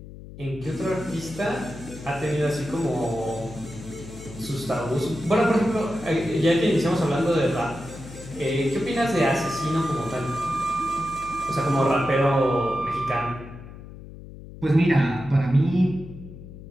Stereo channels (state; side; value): noise; left; hum, 15 dB below the sound